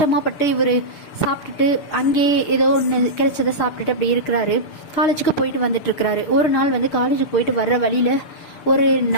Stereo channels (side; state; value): right; late; 6.8 ms